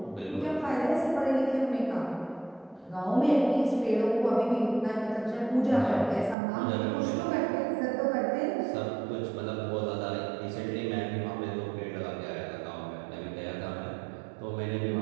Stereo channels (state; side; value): drops out; left; at 6.4 s